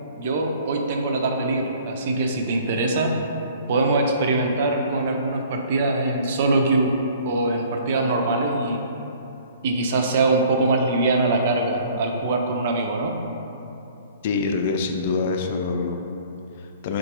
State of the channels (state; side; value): inverted; both; correlation -0.53